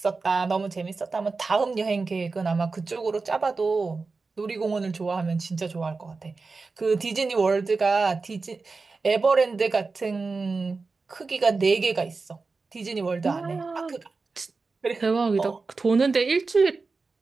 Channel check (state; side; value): quieter; left; 4.1 dB